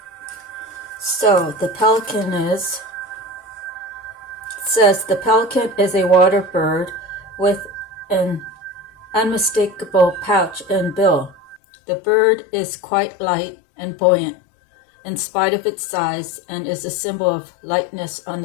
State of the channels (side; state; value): right; drops out; at 11.6 s